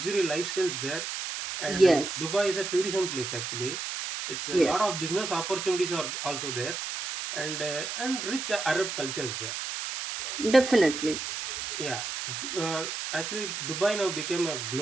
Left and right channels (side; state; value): right; noise; hiss, 5 dB below the sound